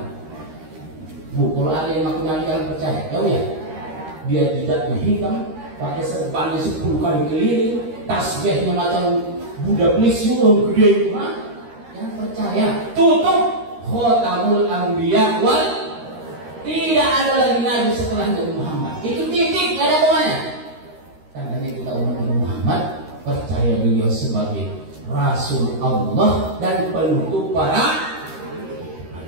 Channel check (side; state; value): left; late; 13 ms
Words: Bu, kalau ada yang ngaku nabi jangan percaya. Tahu ya? Dia jidatnya hitam, pakai serbannya 10 kali keliling, tasbihnya macam Buddha Blisyu gede itu, jangan percaya. Tutup Khatamul Anbiya wal, tidak ada lagi nabi setelah Nabi Muhammad. Itu titik, nggak ada komanya. Karena kita umat Nabi Muhammad percaya beliau sebagai Rasul Allah dan penutup para.